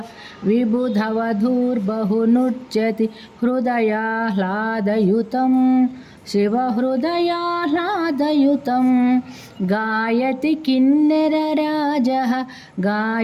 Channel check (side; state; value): both; identical; correlation 1.00